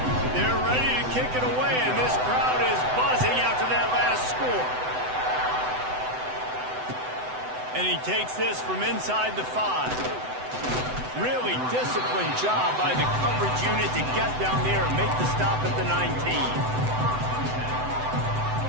They're ready to kick it away, and this crowd is buzzing after that last score. And he takes this from inside the 5. Really disciplined job by the coverage unit to get down there and make the stop at the 19.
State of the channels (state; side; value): late; left; 7.9 ms